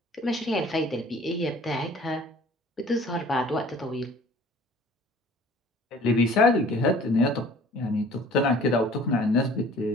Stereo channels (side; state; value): both; normal; correlation 0.50